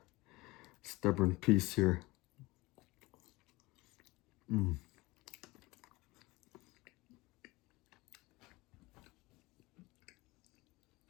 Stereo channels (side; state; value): right; quieter; 21.7 dB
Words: stubborn piece here.